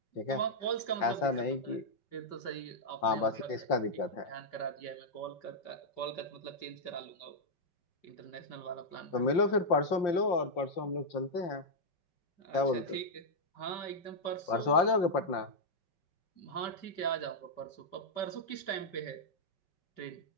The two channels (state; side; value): late; right; 5.7 ms